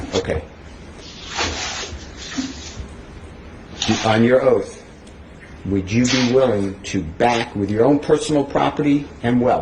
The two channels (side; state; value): both; identical; correlation 1.00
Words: Okay. On your oath, would you be willing to back with your own personal property and